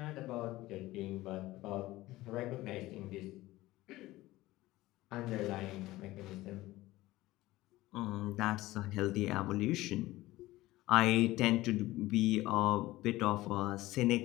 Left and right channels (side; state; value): right; quieter; 17.7 dB